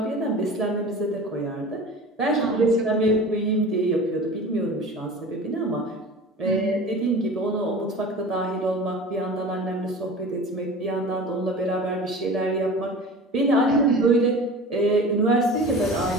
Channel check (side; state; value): both; normal; correlation 0.37